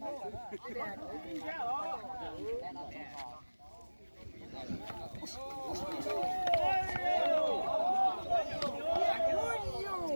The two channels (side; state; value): both; inverted; correlation -1.00